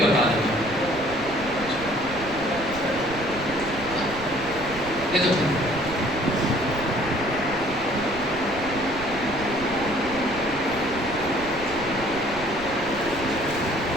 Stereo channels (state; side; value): noise; right; rumble, 13 dB below the sound